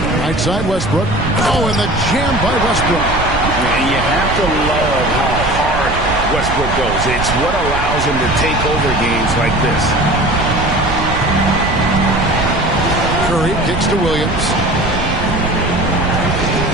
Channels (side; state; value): right; noise; rumble, 5 dB below the sound